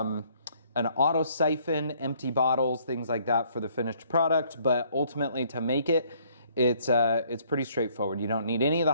An auto siphon, empty bottles, things like that for the finished product. But ultimately, to make it, it's pretty straightforward. You don't need any of the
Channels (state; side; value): inverted; both; correlation -0.63